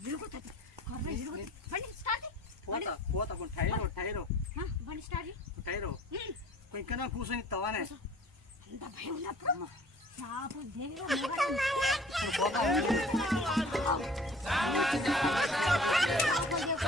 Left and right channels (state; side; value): normal; both; correlation 0.49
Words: ఇరుగుతుంది. బండి స్టార్ట్ పోతా టైరో బండి స్టార్ట్ టైరో ఇంకా కూర్చొని ఇస్తావానే? అంత భయం ఉన్నప్పుడు